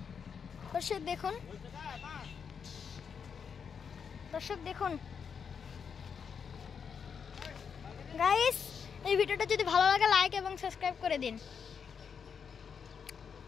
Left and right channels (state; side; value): quieter; right; 6.6 dB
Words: দর্শক দেখুন, দর্শক দেখুন গাইস, এই ভিডিওটা যদি ভালো লাগে লাইক এবং সাবস্ক্রাইব করে দিন।